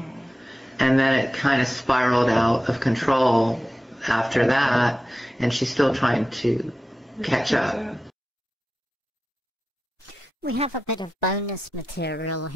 And then it kind of spiraled out of control after that, and she's still trying to catch up. We have a bit of bonus material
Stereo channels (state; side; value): normal; both; correlation 0.92